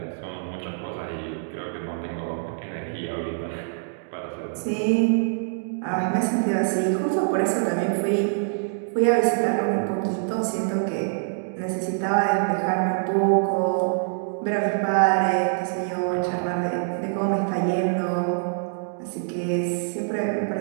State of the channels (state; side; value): silent; left; digital silence